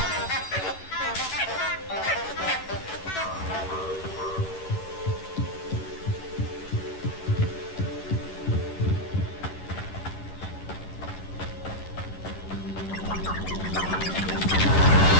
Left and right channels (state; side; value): late; right; 11 ms